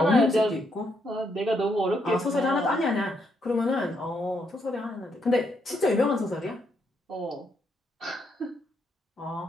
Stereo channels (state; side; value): normal; both; correlation 0.76